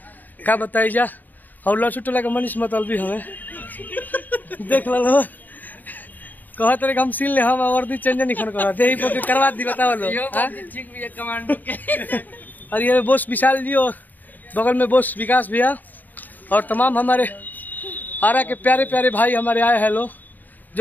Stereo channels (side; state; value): right; late; 0.085 ms